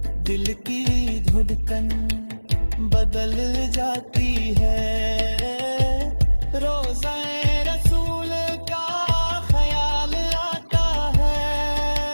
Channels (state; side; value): inverted; both; correlation -1.00